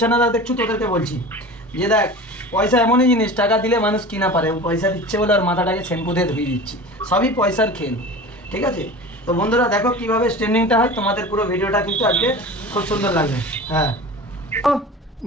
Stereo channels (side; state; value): both; normal; correlation 0.35